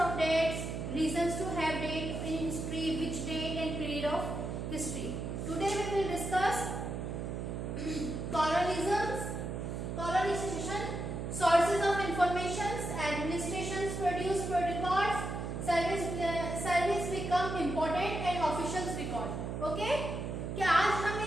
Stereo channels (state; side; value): noise; right; hum, 4 dB below the sound